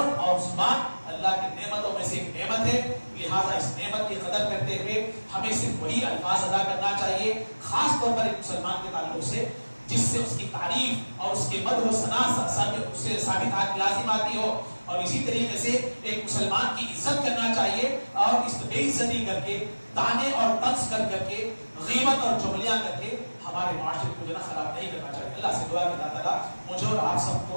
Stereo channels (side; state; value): both; inverted; correlation -1.00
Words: اور زبان اللہ کی نعمتوں میں سے ایک نعمت ہے. لہذا اس نعمت کی قدر کرتے ہوئے ہمیں صرف وہی الفاظ ادا کرنا چاہیے، خاص طور پر ایک مسلمان کے تعلق سے، جس سے اس کی تعریف اور اس کے مدح و ثنا سے ثابت لازم آتی ہو. اور اسی طریقے سے ایک مسلمان کی عزت کرنا چاہیے، اور اس بے عزتی کر کے، تانے اور طنز کر کے، غیبت اور چغلیاں کر کے ہمارے معاشرے کو جو ہے خراب نہیں کرنا چاہیے. اللہ سے دعا کہ اللہ تعالیٰ مجھے اور آپ سب